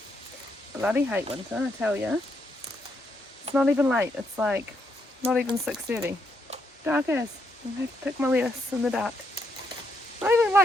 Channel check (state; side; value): normal; both; correlation 0.77